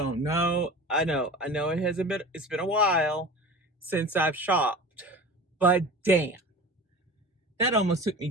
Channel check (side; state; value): both; normal; correlation 0.36